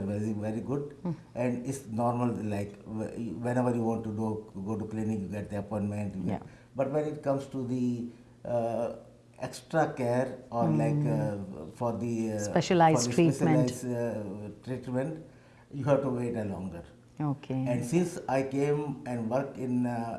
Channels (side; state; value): both; identical; correlation 1.00